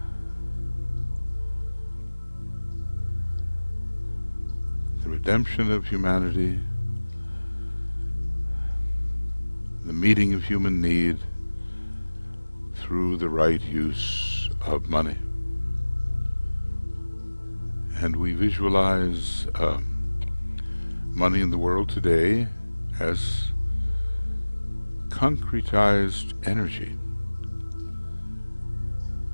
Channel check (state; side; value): inverted; both; correlation -1.00